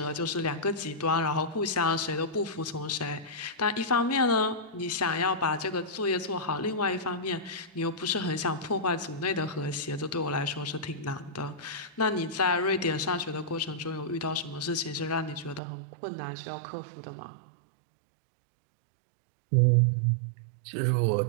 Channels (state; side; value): drops out; left; at 15.6 s